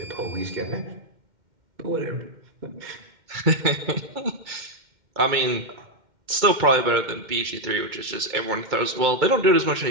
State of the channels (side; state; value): left; late; 2.1 ms